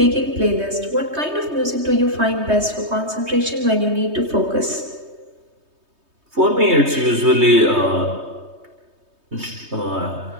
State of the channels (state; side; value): late; left; 3.2 ms